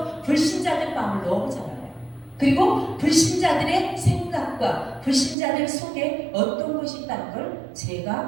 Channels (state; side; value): drops out; left; at 5.4 s